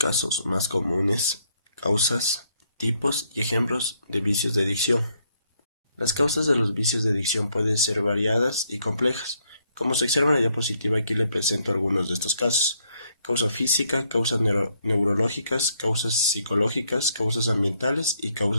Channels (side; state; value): both; inverted; correlation -0.72